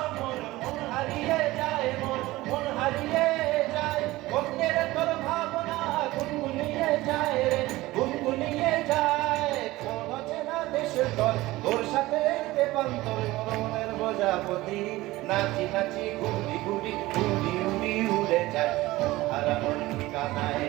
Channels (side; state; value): left; quieter; 18.5 dB